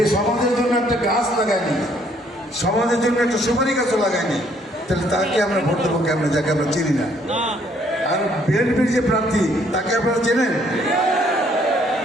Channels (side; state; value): both; normal; correlation 0.65